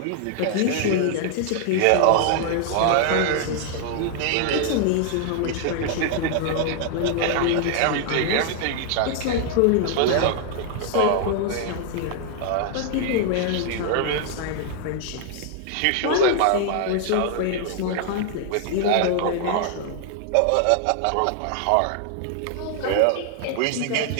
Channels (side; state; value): both; different; correlation 0.00